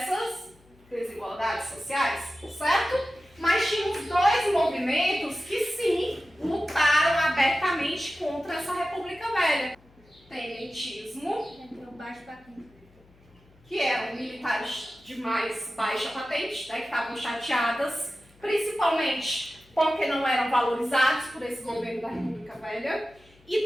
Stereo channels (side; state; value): left; noise; hum, 29 dB below the sound